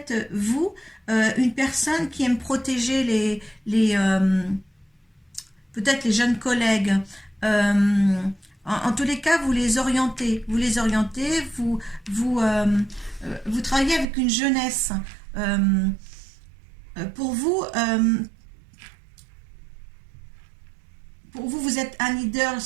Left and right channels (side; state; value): left; drops out; at 14.1 s